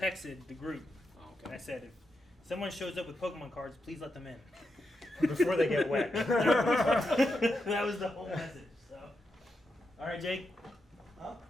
the group Oh, and okay. I said, if someone shows up with Pokemon cards, please let them in. Before they get wet. That was the whole message. So, all right, Jake. Huh?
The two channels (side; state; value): both; normal; correlation 0.85